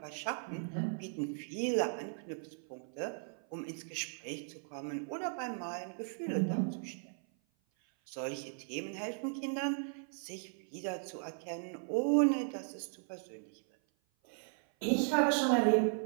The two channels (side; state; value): left; silent; 53 dB below the other